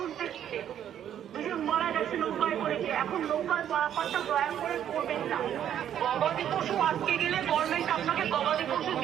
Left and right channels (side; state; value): left; quieter; 10.1 dB